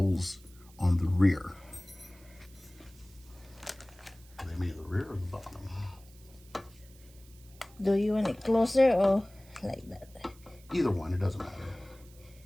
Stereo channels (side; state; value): right; noise; hiss, 25 dB below the sound